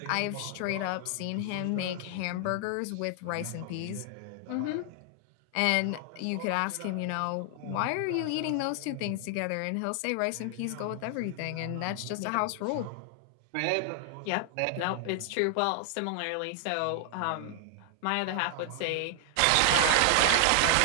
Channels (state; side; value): different; both; correlation 0.00